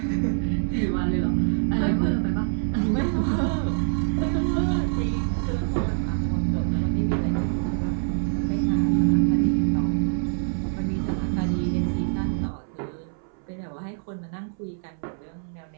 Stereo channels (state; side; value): silent; left; 62 dB below the other